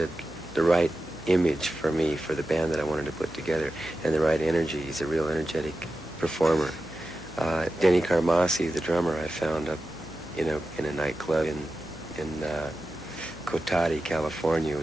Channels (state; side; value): noise; right; hum, 20 dB below the sound